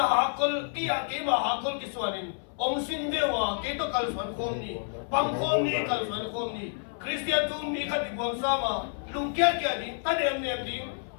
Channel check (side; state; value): right; silent; 59 dB below the other